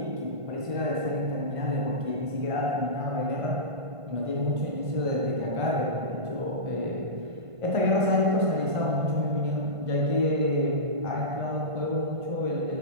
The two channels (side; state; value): left; late; 1.5 ms